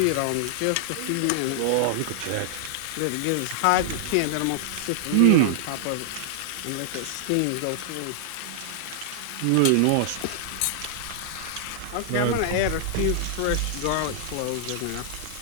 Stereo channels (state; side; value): different; both; correlation -0.01